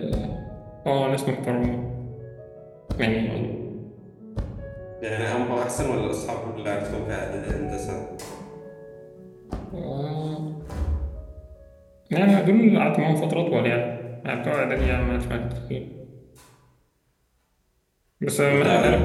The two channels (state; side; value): identical; both; correlation 1.00